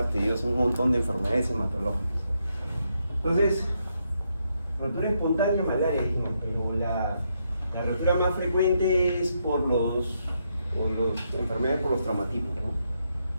tediosa, un montón de enfermedades hematológicas. Entonces, rotura espontánea, malaria, dijimos, pero la rotura más frecuente es por enfermedades por los traumatismos, ¿no?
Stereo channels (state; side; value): inverted; both; correlation -0.79